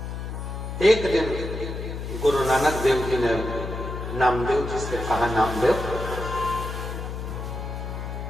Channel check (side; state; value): left; noise; hum, 6 dB below the sound